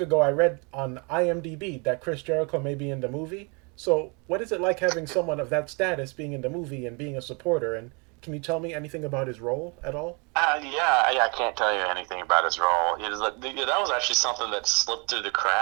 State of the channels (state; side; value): quieter; left; 32.4 dB